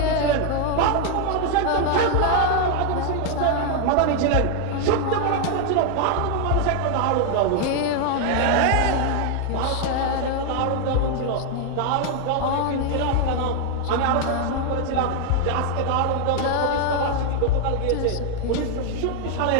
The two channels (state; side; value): different; both; correlation 0.00